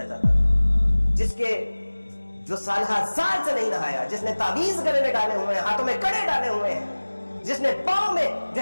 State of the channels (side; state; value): both; inverted; correlation -1.00